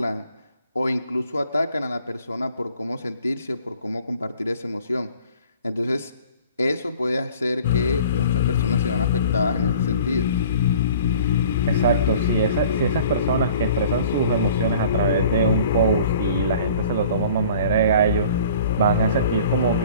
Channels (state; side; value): inverted; both; correlation -0.48